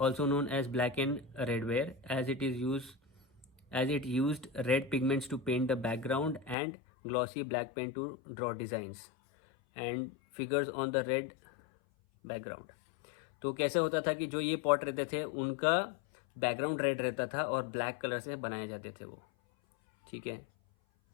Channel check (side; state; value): right; drops out; at 6.6 s